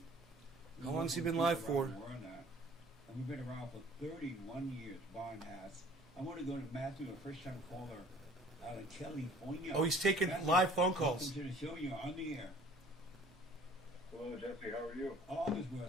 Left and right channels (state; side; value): normal; both; correlation 0.52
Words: How long has he been live for? And we've been around for 31 years, Barn has. I want to go to Matthew, a first-time caller out of California. Oh, he's taking Matthew, live phone calls. Welcome to the show. You're on the air. Hello, Jesse. How are you? All is well,